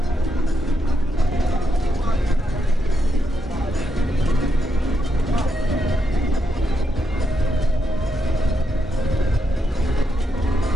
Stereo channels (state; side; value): normal; both; correlation 0.82